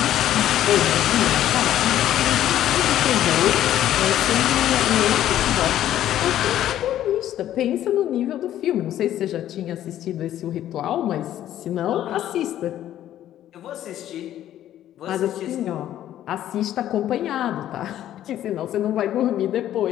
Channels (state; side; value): quieter; right; 12.1 dB